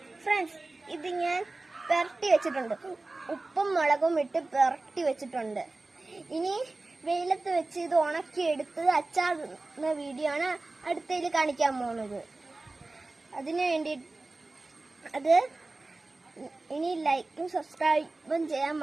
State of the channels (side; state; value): left; quieter; 3.2 dB